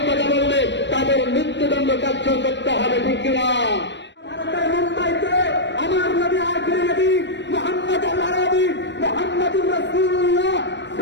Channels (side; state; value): right; late; 0.52 ms